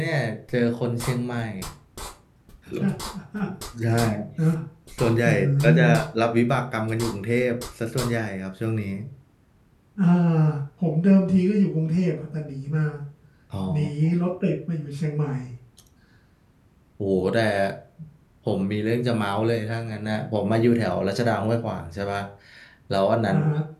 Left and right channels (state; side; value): identical; both; correlation 1.00